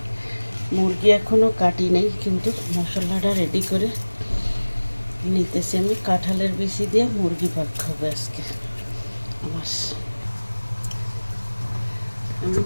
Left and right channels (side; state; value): both; inverted; correlation -1.00